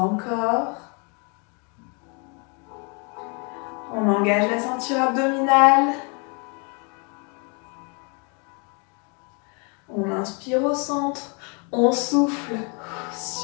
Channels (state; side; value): quieter; right; 34.8 dB